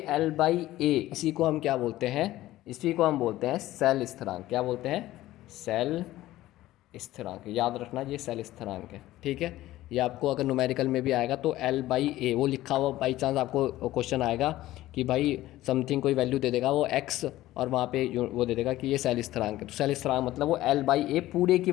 L/A, इसी को हम क्या बोलते हैं, इसी को हम बोलते हैं सेल स्थिरांक। क्या बोलते हैं, सेल स्थिरांक। याद रखना ये सेल स्थिरांक है। ठीक है। ये आपको अगर न्यूमेरिकल में भी आएगा तो L/A वो लिखा हुआ, बाई चांस आपको क्वेश्चन आएगा कि भाई समथिंग कोई वैल्यू दे देगा वो x, और वहाँ पे वो दे देगा कि ये सेल स्थिरांक है। तो सेल स्थिरांक मतलब वो L/A पूरे की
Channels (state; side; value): quieter; right; 15.7 dB